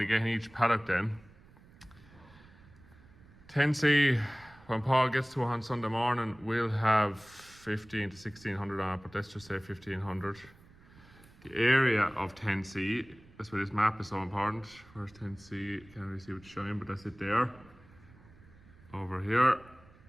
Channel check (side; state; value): right; noise; rumble, 24 dB below the sound